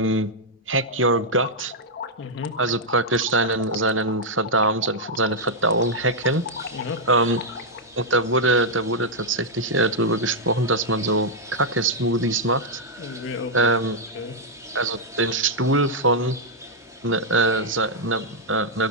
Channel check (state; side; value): normal; both; correlation -0.04